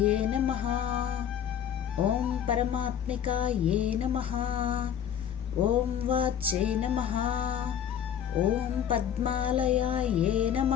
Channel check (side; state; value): right; quieter; 9.2 dB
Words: నమః, ఓం పరమాత్మికాయే నమః, ఓం వాచ్యే నమః, ఓం పద్మాలయాయే